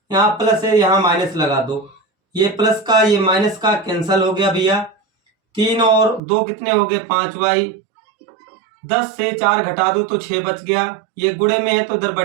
यहाँ प्लस है, यहाँ माइनस लगा दो। ये प्लस का ये माइनस का कैंसल हो गया भैया। 3 और 2 कितने हो गए? 5y। 10 से 4 घटा दो तो 6 बच गया। ये गुणे में है तो इधर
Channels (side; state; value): left; drops out; at 6.2 s